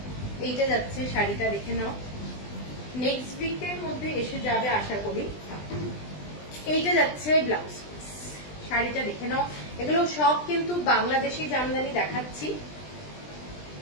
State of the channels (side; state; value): right; late; 20 ms